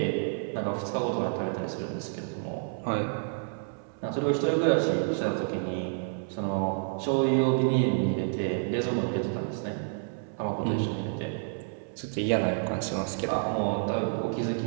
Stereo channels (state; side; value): silent; left; 58 dB below the other